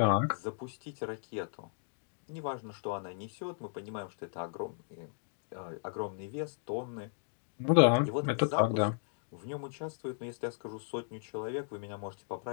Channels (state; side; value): silent; right; digital silence